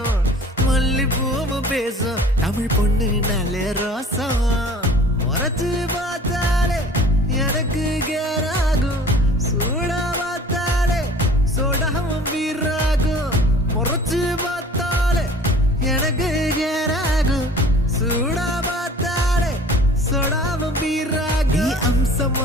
மல்லிப்பூவும் பேசும் தமிழ் பொண்ணு நல்ல ரோசம் முறைச்சு பார்த்தாலே எனக்கு கேராகும் சூடா பார்த்தாலே சோடாவும் வீராகும் முறைச்சு பார்த்தாலே எனக்கு கேராகும் சூடா பார்த்தாலே சோடாவும் வீராகும்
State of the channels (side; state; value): both; normal; correlation 0.47